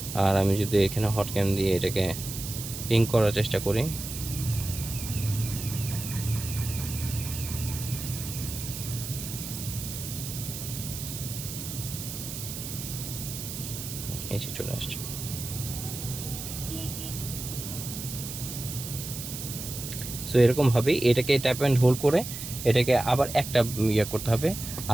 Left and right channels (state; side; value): noise; right; hiss, 8 dB below the sound